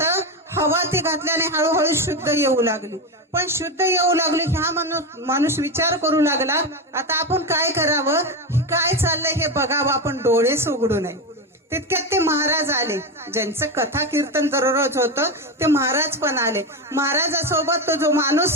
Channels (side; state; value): both; normal; correlation 0.15